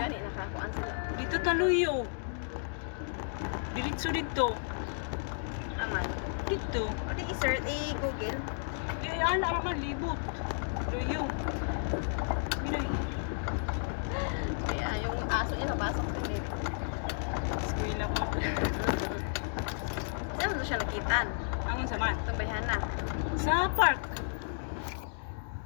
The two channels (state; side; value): silent; right; digital silence